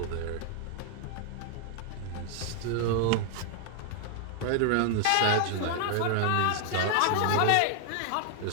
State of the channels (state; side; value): different; both; correlation 0.00